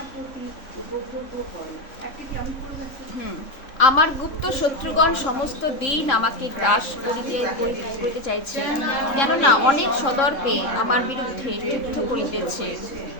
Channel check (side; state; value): right; late; 3.7 ms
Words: প্রতি উপদ্রব করে। একটা কি আমি করে যাচ্ছি? আমার গুপ্ত শত্রুগণ সমস্ত দিন আমাকে গ্রাস করিতে চাইছে, কেননা অনেক সদর্পে আমার বিরুদ্ধে যুদ্ধ করিতেছে।